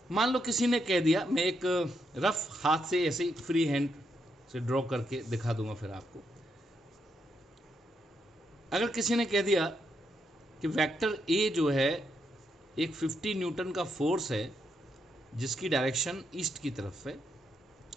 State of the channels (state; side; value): normal; both; correlation 0.79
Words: मान लो किसी ने कह दिया, मैं एक रफ हाथ से ऐसे ही फ्री हैंड से ड्रॉ करके दिखा दूंगा फिर आपको। अगर किसी ने कह दिया कि वेक्टर ए जो है एक 50 न्यूटन का फोर्स है जिसकी डायरेक्शन ईस्ट की तरफ है,